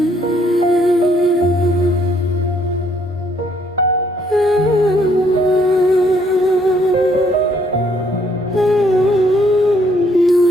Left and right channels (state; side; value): normal; both; correlation 0.67